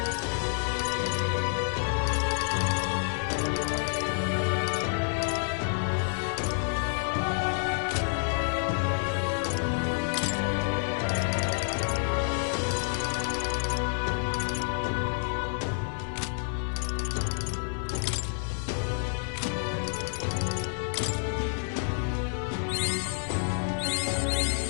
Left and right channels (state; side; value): silent; right; 59 dB below the other